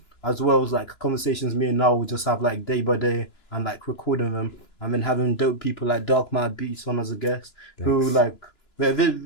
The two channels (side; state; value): right; late; 2.9 ms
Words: as well as like conversations me and Niall will just have like day by day, and like recording them, and then having dope people like Darkmatterbeatz on as a guest. Thanks. Who